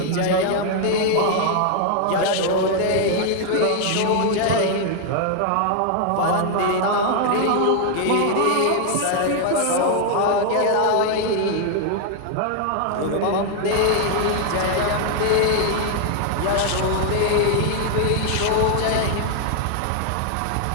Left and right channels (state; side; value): different; both; correlation 0.00